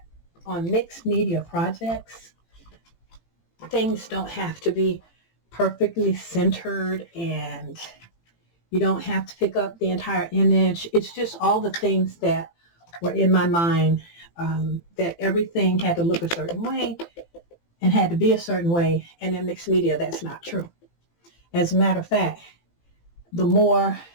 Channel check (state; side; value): late; right; 18 ms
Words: on mixed media projects, things don't have to be perfectly centered, and you don't have to pick up the entire image. It's just all the things that were in my mind, that everything had to look a certain way and had to be a certain way. And in mixed media, that's not true. As a matter of fact, the more